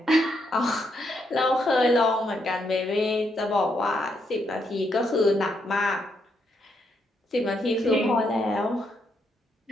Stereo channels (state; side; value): normal; both; correlation 0.77